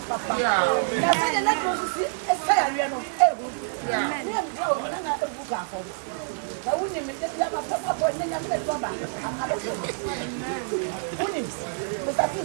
na sɛ yɛ n'aduro nso si ɛsɛ yareɛ no ɛhu ne yɛ mbia wɔ na na ɛhu baafɔ na wonim ne bi aba papapɔ ne nyame ne dɔba abɛsɛ wonim mosafo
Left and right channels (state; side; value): silent; left; digital silence